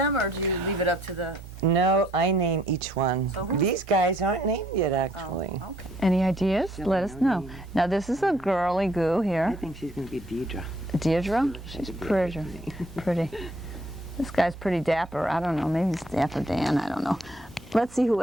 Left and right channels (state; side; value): normal; both; correlation 0.64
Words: or do you leave it up to the... No, I name each one. So who- These guys aren't named yet, actually. Oh, okay. Any ideas? No, Let us no know. name. Now this is a girly goo I here. think she's going to be Deidre. Deirdre? She's That's a pretty. Beatrice name. Pretty. This guy's pretty dapper. I don't know. Maybe it's Dapper Dan. I don't know. Let's see who